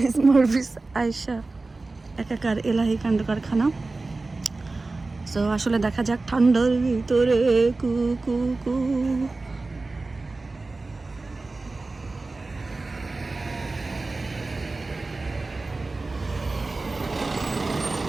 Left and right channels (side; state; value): left; quieter; 3.4 dB